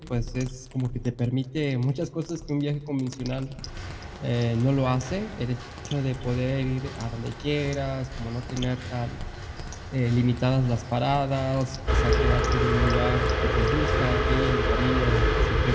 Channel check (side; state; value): both; identical; correlation 1.00